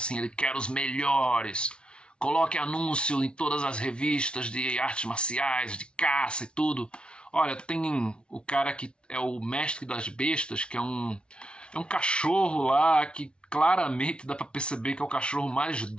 ele quer os melhores. Coloque anúncio em todas as revistas de artes marciais, de caça e tudo. Olha, tem o cara que é o mestre das bestas, que é um cachorro lá que claramente dá pra perceber que é o cachorro mais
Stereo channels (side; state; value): right; late; 0.057 ms